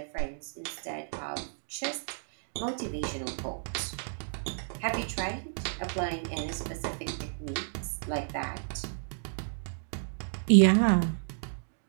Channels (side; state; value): left; silent; digital silence